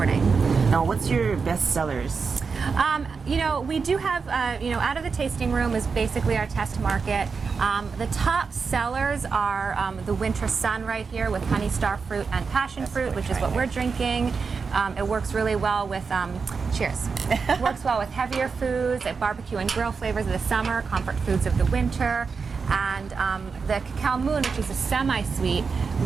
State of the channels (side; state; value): left; quieter; 5.2 dB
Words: Now, what's your best sellers? We do have, out of the tasting room is basically our test market. The top sellers are the Winter Sun right here with honey star fruit and passion fruit, which is what we're drinking. It works really well with, cheers. It works well with heavier foods, barbecue and grill flavors of the summer, comfort foods of the winter. And the Cacao Moon, which is a semi-sweet,